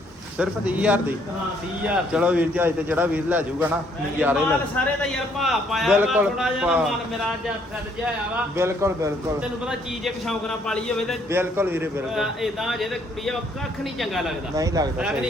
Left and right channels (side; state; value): both; normal; correlation 0.67